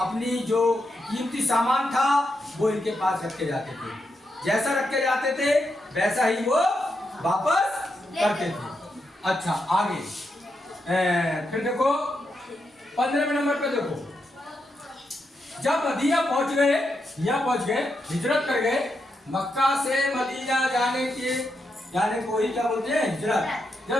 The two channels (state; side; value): normal; both; correlation 0.84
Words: जो कीमती सामान था वो इनके पास रख के जाते थे, जैसा रख के जाते थे वैसा ही वो वापस करते थे। अच्छा, आगे फिर देखो 15वें नंबर पे देखो, जब मदीना पहुंच गए, यहाँ पहुंच गए, हिजरत कर गए, मक्का से मदीना जाने को ही क्या बोलते हैं, हिजरत।